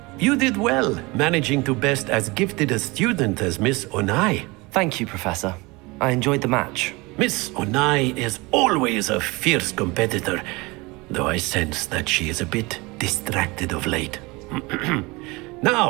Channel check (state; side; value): quieter; left; 24.4 dB